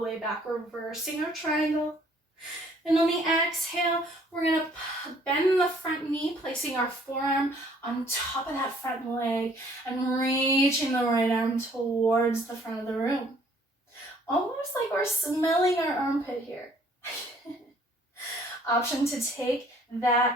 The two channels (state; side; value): normal; both; correlation 0.59